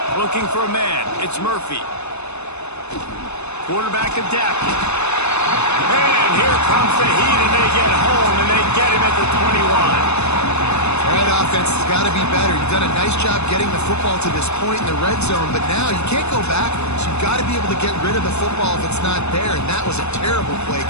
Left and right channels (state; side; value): late; right; 0.81 ms